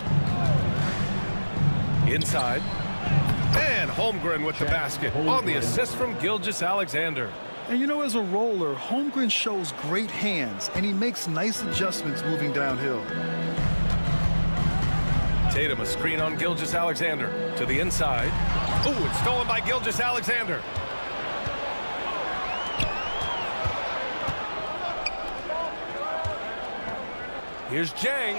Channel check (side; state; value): both; inverted; correlation -1.00